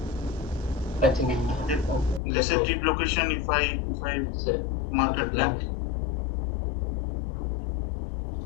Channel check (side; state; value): right; drops out; at 2.2 s